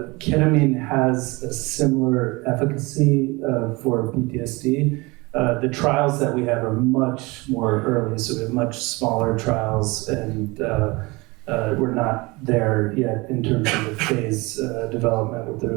Ketamine has a similar efficacy for PTSD. The trials that we have are much more early, so we have much smaller trials, and we're not there yet in terms of the phase development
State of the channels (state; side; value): quieter; left; 24.5 dB